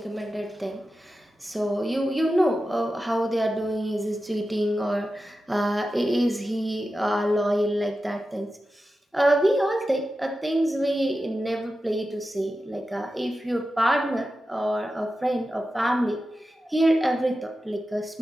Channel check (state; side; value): normal; both; correlation 0.92